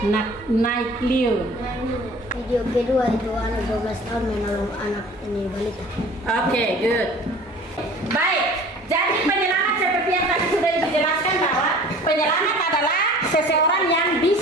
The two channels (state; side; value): normal; both; correlation 0.46